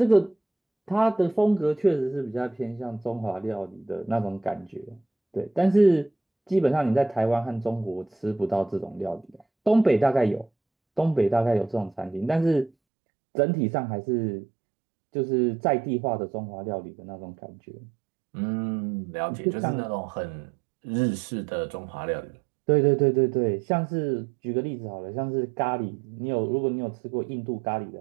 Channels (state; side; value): drops out; left; at 12.7 s